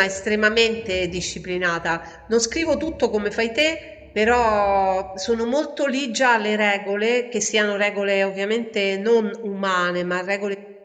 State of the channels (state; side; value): identical; both; correlation 1.00